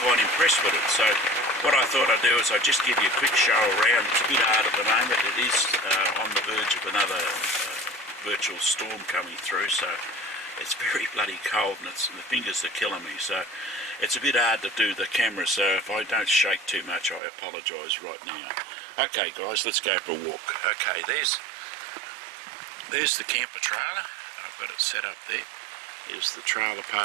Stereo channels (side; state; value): left; drops out; at 17.2 s